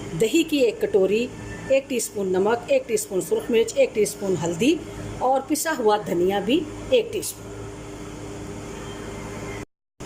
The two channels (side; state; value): both; identical; correlation 1.00